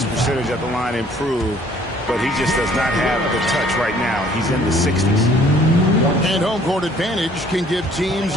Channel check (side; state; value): both; normal; correlation 0.58